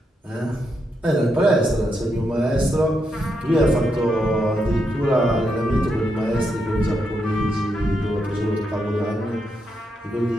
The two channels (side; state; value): both; normal; correlation 0.82